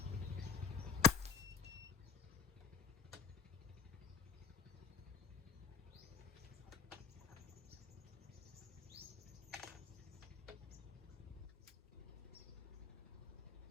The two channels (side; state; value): right; quieter; 7.0 dB